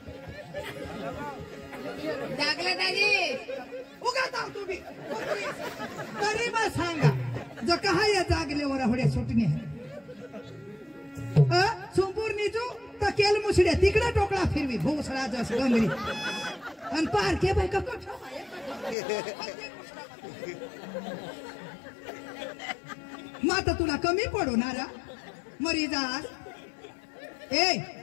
जागलं दाजी उगा जाऊ तुम्ही तरी मग सांगा जो कहा या जागलेवर होड्या सुटणे सोमपूर निजू तर केल मुसड्या तिकडे टोकळा फिरवी भोसळा जस गंगरी आणि पारखे बाय का माता तुला कमी पडू ना मरी जास ए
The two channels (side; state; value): right; drops out; at 18.9 s